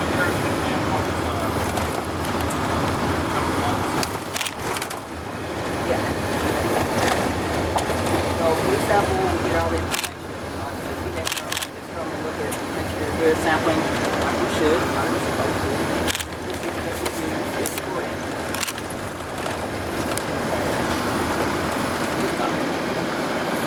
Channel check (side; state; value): both; identical; correlation 1.00